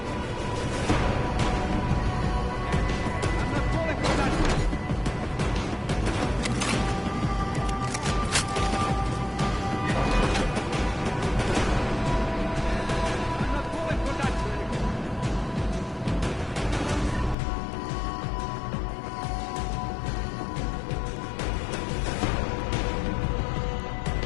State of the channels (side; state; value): right; drops out; at 17.4 s